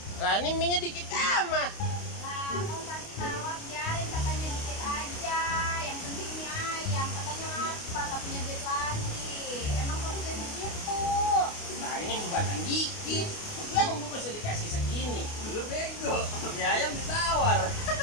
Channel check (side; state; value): right; late; 29 ms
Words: Lah ini minyak dikit amat. Lah, kamu tadi nawar biarin katanya dikit aja. Yang penting mie ayam katanya lapar, nggak punya duit lagi. Emang kok bisa begitu? Nah, ini buatan dikit. Yang gua bisa dikasih segini. Lu bego, mie ayam ditawar.